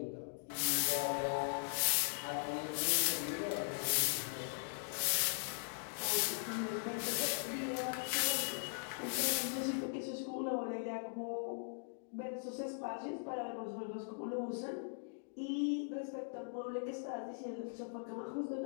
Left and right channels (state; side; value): silent; right; digital silence